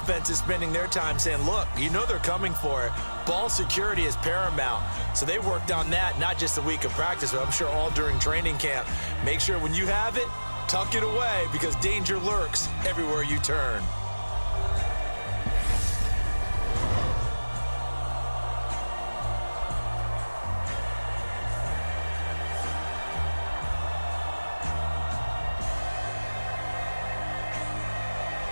spending their time saying, look, you know they're coming for it. Ball security is paramount. So they worked on that, not just a week of practice, but I'm sure all during training camp. Make sure when you have it, tuck it away because danger lurks everywhere you turn.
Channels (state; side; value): inverted; both; correlation -1.00